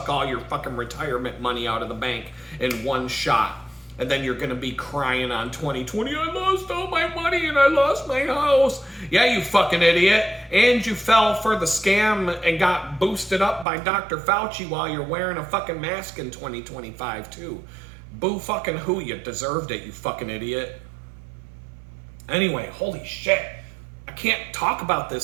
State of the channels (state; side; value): drops out; left; at 13.7 s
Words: all your fucking retirement money out of the bank in one shot. And then you're going to be crying on 2020, I lost all my money and I lost my house. Yeah, you fucking idiot. And you fell for the scam and got boosted up by Dr. Fauci while you're wearing a fucking mask in 2025 too. Boo fucking who, you deserved it, you fucking idiot. Anyway, holy shit. I can't talk about